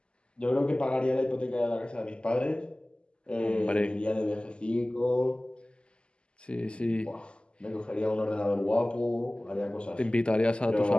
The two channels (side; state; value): right; late; 0.051 ms